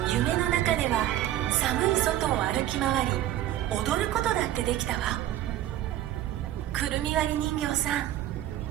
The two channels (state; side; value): quieter; left; 13.1 dB